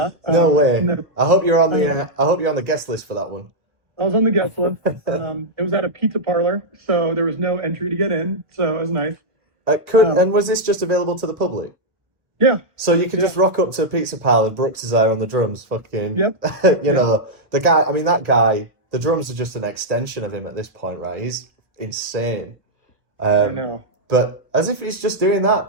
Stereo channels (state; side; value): late; left; 1.1 ms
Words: No way. and then I hope you're on the guest list for that one. I was on the guest list. It was at a pizza parlor, so there was no entry to get in, so it was nice. And was this just available to the public? Yeah. So you could Yeah. just rock up to a pizza parlor, Brooks is there on the drums, fucking. Yep. You know, the guy. I mean, that guy. The drums are just an extension of him at this point, right? He's insane. I know. But as if he's just doing that.